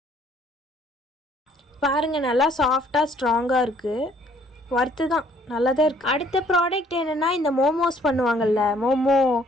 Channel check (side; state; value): both; normal; correlation 0.61